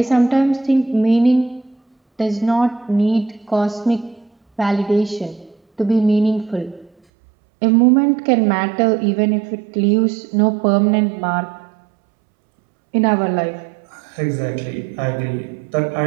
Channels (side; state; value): left; drops out; at 6.9 s